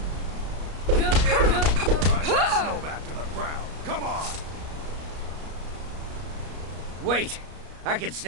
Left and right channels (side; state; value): left; late; 33 ms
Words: Drive that snowback to the ground. Come on! Wait! I can